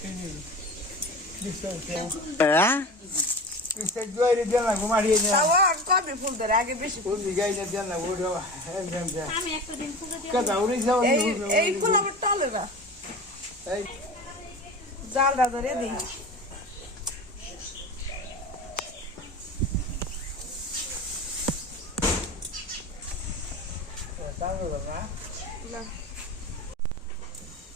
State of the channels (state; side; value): normal; both; correlation 0.32